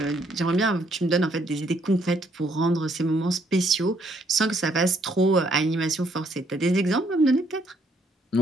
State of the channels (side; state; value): both; normal; correlation 0.69